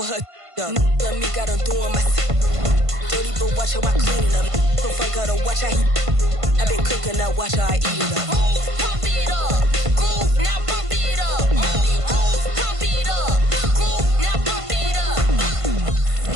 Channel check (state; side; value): late; left; 1.5 ms